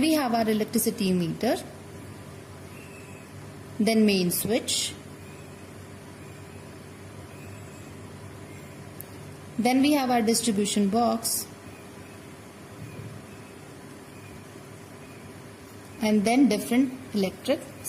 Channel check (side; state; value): both; identical; correlation 1.00